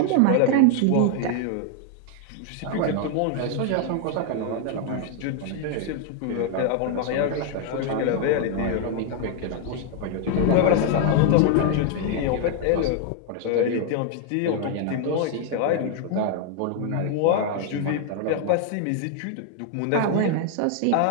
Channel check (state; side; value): different; both; correlation 0.00